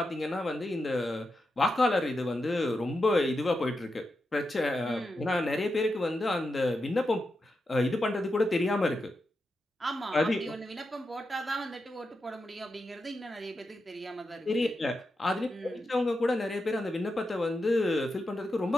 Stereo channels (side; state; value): both; normal; correlation 0.88